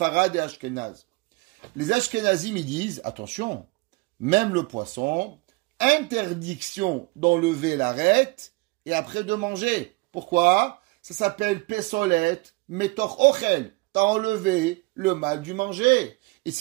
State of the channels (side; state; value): left; quieter; 25.1 dB